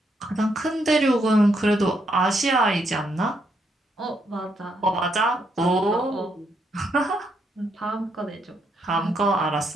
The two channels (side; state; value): both; normal; correlation 0.76